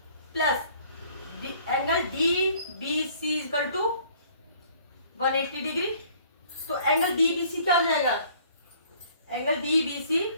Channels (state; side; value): inverted; both; correlation -0.57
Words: plus angle DBC equal to 180 degree. तो एंगल DBC क्या हो जाएगा? एंगल DBC